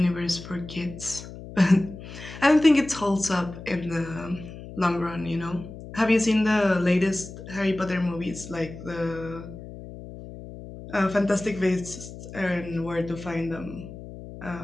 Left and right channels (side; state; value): left; noise; hum, 13 dB below the sound